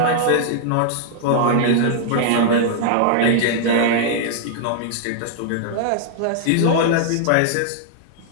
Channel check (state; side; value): different; both; correlation -0.01